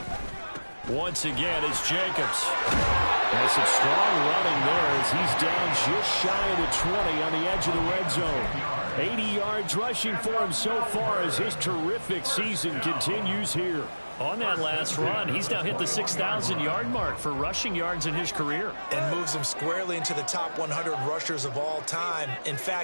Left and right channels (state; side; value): inverted; both; correlation -1.00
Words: Once again, it's Jacobs. There's some strong running there as he's down just shy of the 20 on the edge of the red zone. 80 yards rushing for him so far as his terrific season continues here. On that last run, he's now hit the 6,000-yard mark for rushing yards in his career. And moves him squarely into the top 100 rushers of all time. In